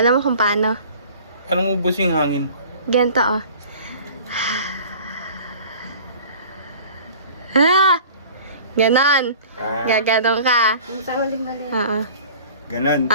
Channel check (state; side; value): inverted; both; correlation -0.45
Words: mo kung paano? Anong ubos yung hangin? Ganito, oh. Ah! Ganon. Gaganon ka. Oo. Ganon.